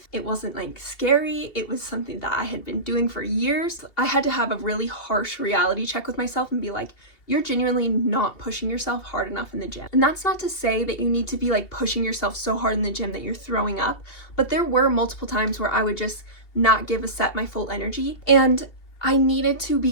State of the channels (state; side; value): late; right; 2.7 ms